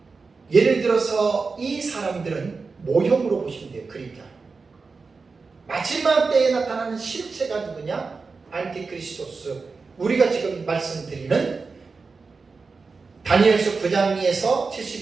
예를 들어서 이 사람들은 모형으로 보시면 돼요. 그림자. 마지막 때에 나타나는 실체가 누구냐? 안티크리스토스. 우리가 지금 말씀드리는 다니엘서 9장에서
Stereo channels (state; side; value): quieter; left; 4.4 dB